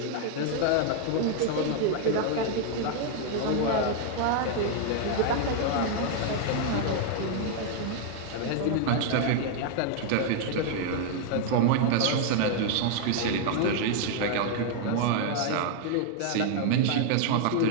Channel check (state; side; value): different; both; correlation 0.00